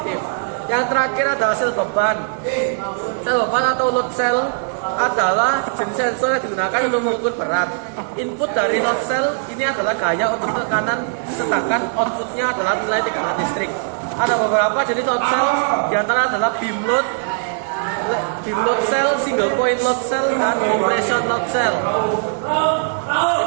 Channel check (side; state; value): left; silent; 64 dB below the other